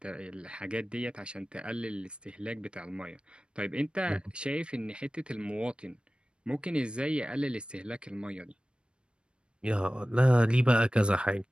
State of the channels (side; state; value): left; late; 0.056 ms